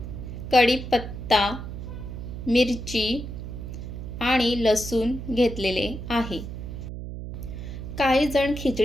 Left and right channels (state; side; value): noise; right; hum, 8 dB below the sound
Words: कढीपत्ता, मिरची आणि लसूण घेतलेले आहे। काही जण